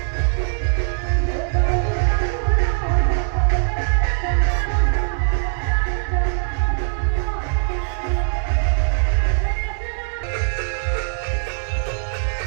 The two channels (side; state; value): left; silent; digital silence